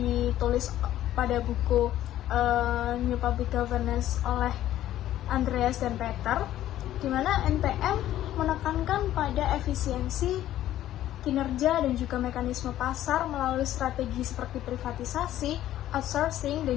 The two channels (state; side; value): quieter; right; 13.0 dB